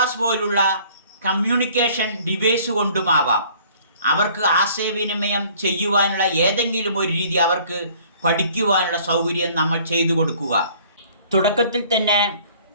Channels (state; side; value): inverted; both; correlation -0.55